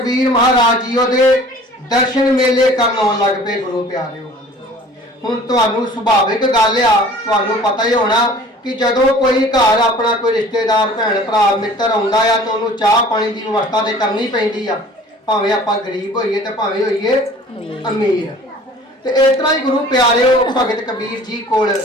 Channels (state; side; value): normal; both; correlation 0.48